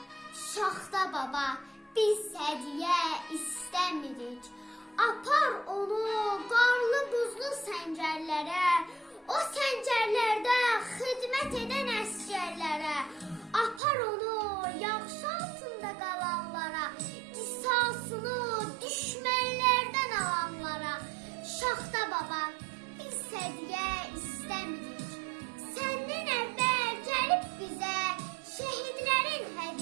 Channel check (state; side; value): drops out; left; at 13.8 s